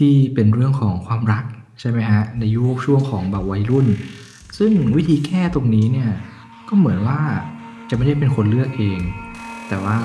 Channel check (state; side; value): identical; both; correlation 1.00